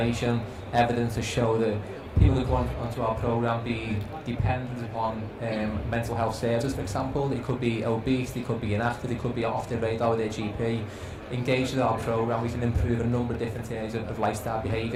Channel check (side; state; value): both; identical; correlation 1.00